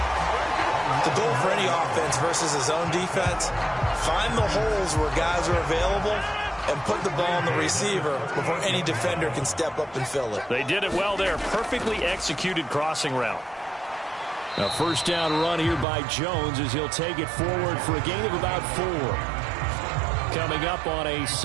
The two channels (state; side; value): drops out; left; at 15.9 s